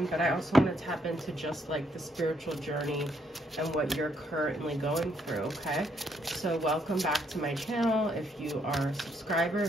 But I also want to tap into just like the spiritual journey and what you're currently going through. Okay, so welcome back to my channel. If you are a subscriber,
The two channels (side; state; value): both; normal; correlation 0.73